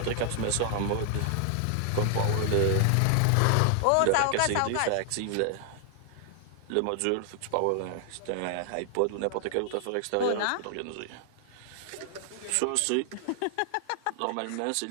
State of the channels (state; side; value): different; both; correlation 0.00